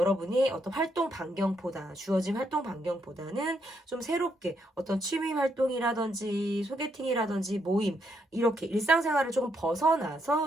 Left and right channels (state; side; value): normal; both; correlation 0.77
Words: 어떤 활동 반경보다 주어진 활동 반경보다는 좀 새롭게 어떤 취미 활동이라든지 소개팅이라든지 모임 이렇게 일상생활을 조금